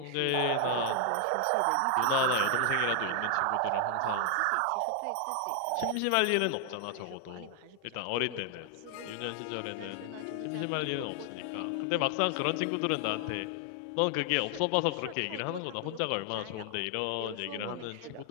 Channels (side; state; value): both; different; correlation 0.00